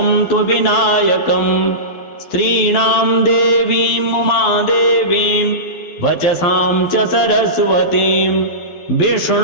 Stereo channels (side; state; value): right; late; 12 ms